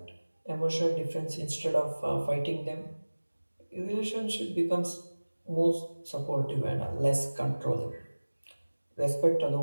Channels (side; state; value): both; inverted; correlation -1.00